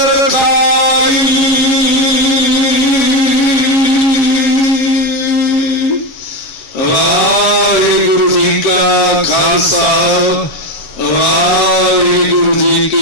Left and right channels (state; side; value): late; right; 7.1 ms